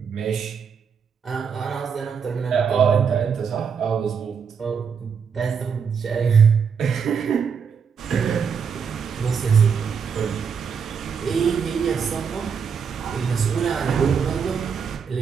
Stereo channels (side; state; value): left; quieter; 6.5 dB